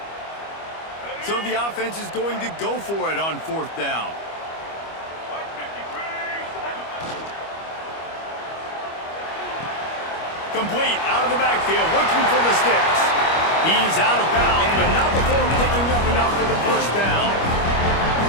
So the offense is going to go for it on fourth down. Complete out of the backfield, looking for the sticks. He's out of bounds, but not before picking up enough for the first down.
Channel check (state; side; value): late; right; 25 ms